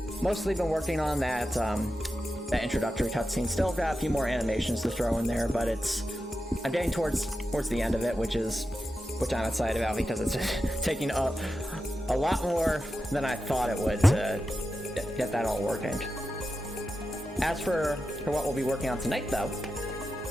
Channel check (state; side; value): normal; both; correlation 0.90